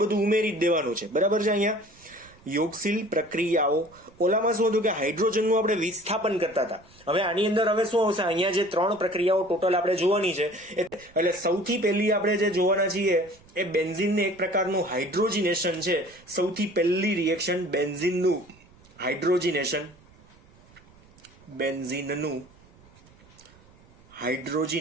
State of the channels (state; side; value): noise; right; rumble, 27 dB below the sound